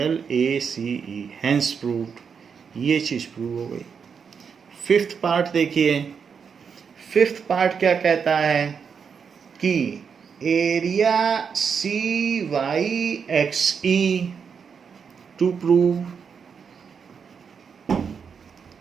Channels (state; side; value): quieter; left; 6.4 dB